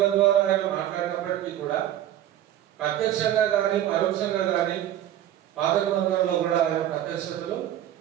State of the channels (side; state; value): left; quieter; 12.1 dB